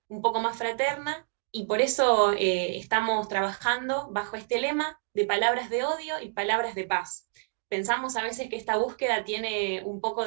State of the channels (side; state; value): left; silent; digital silence